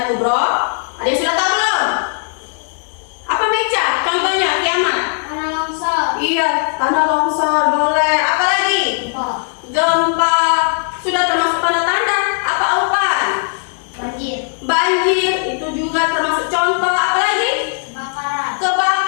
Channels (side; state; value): right; silent; 68 dB below the other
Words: kubro? Ada yang sudah tahu belum? Apa Meca? Contohnya kiamat. Tanah longsor. Iya, tanah longsor boleh. Apa lagi? Gempa. Sudah termasuk tanda-tanda. Apa aupan? Banjir. Banjir itu juga termasuk contoh. Apa lagi? Kebakaran.